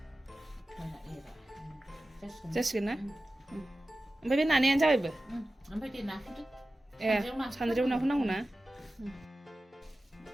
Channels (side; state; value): both; normal; correlation 0.95